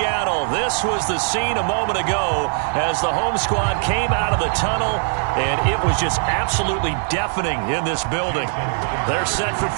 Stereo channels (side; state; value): left; silent; 56 dB below the other